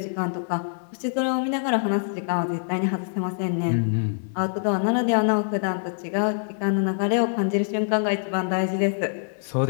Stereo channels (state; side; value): silent; right; 61 dB below the other